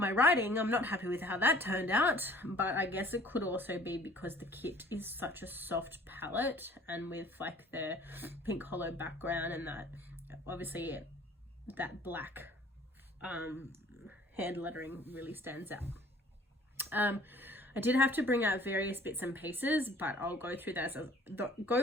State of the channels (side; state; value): both; normal; correlation 0.53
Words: writing, I'm not happy with how that turned out, but I guess it could also be because the kit is such a soft palette, and with like the pink hollow background and that obviously that black hand lettering really stands out. I did have to bring out various bits and pieces, but I'll go through those